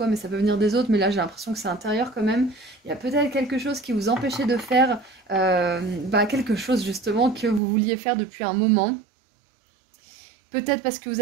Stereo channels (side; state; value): left; drops out; at 7.6 s